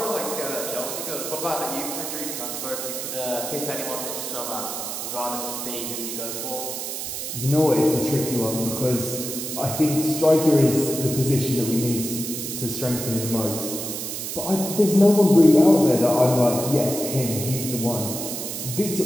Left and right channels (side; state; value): right; noise; hiss, 5 dB below the sound